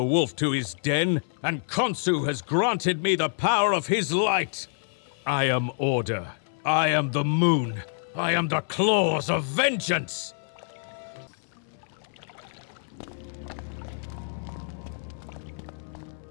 wolf to his den, and Khonsu has granted me the power of his light. I am order. I am the moon. I am the claws of vengeance.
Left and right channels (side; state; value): right; silent; 60 dB below the other